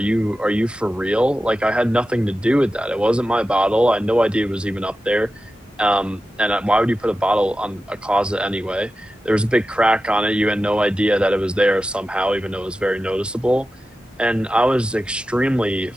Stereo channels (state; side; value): normal; both; correlation 0.93